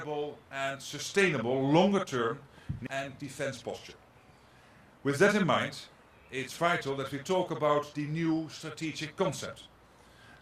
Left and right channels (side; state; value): both; identical; correlation 1.00